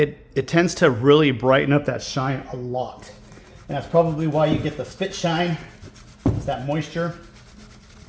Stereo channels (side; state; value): both; identical; correlation 1.00